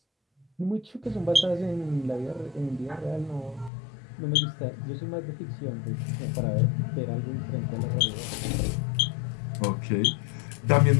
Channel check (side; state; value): right; drops out; at 3.7 s